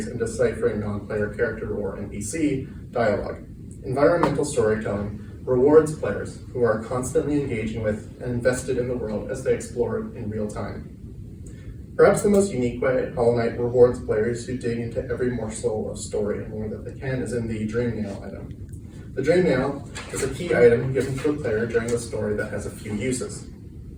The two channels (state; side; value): identical; both; correlation 1.00